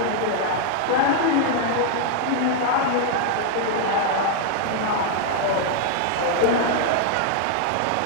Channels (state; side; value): different; both; correlation 0.00